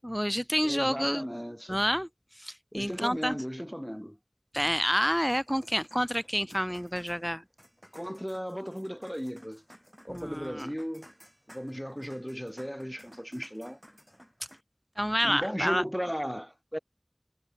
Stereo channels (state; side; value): identical; both; correlation 1.00